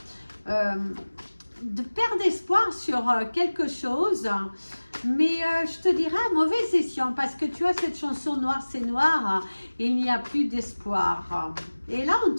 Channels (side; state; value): both; inverted; correlation -1.00